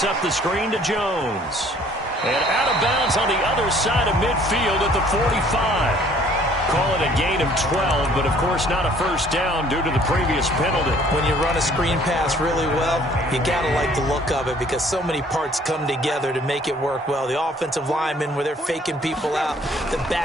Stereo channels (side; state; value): both; normal; correlation 0.58